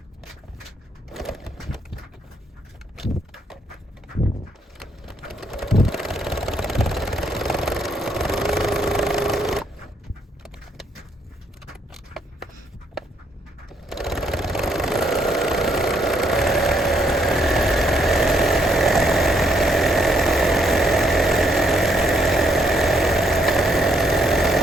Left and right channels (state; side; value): normal; both; correlation 0.72